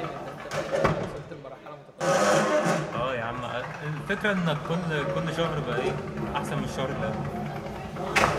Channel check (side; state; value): both; identical; correlation 1.00